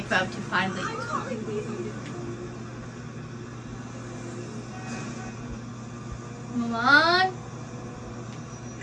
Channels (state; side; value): identical; both; correlation 1.00